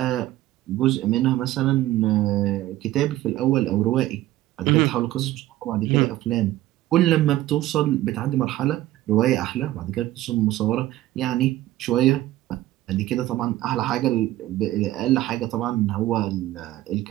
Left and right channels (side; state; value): left; quieter; 15.2 dB